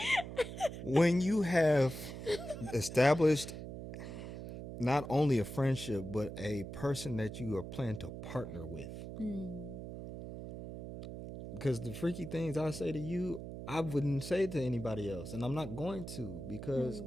when you have established not only a friendship but a person that you are planning to partner with. Because the freaky things I say to you, I wouldn't say to anybody else, and I'm not going to because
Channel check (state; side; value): noise; right; hum, 9 dB below the sound